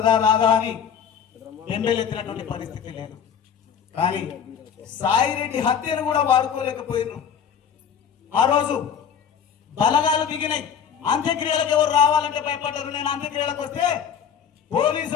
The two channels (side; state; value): right; quieter; 7.8 dB